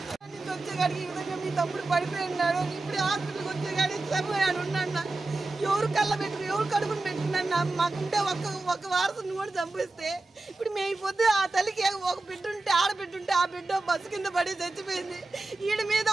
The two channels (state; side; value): quieter; left; 3.2 dB